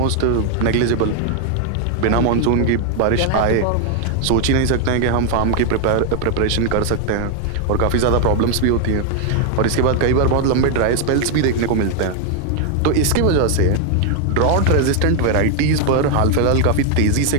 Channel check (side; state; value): both; different; correlation 0.00